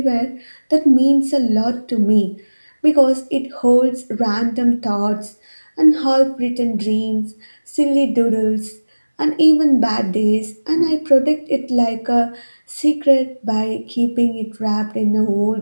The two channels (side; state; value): both; inverted; correlation -1.00